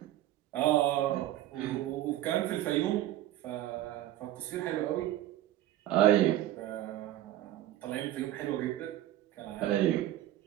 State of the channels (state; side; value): quieter; left; 13.6 dB